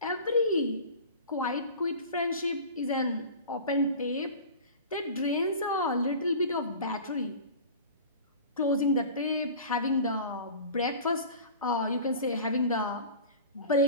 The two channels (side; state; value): both; inverted; correlation -0.37